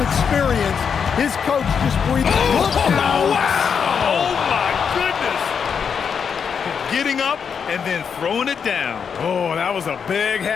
experience, his coach just breathed. Wow! Oh, my goodness. Getting up and then throwing it down. Oh, that was a big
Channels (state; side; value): quieter; right; 6.7 dB